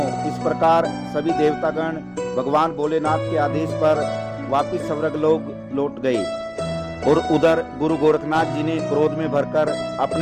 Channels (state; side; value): identical; both; correlation 1.00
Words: इस प्रकार सभी देवतागण भगवान भोलेनाथ के आदेश पर वापिस स्वर्गलोक लौट गए और उधर गुरु गोरखनाथ जी ने क्रोध में भरकर